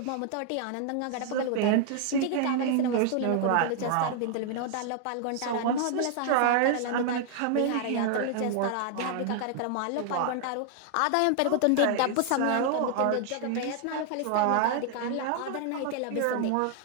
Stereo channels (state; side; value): different; both; correlation 0.00